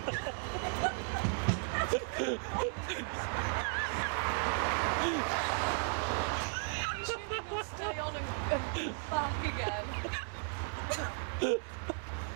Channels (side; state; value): left; silent; 54 dB below the other